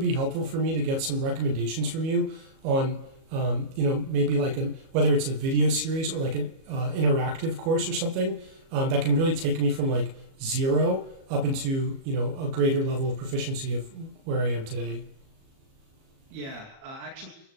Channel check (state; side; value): late; left; 37 ms